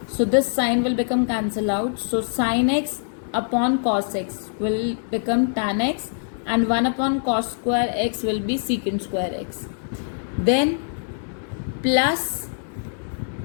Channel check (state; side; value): silent; right; 63 dB below the other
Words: So this sign will become cancel out. So sin x upon cos x will become tan x, and 1 upon cos square x will be secant square x. Then plus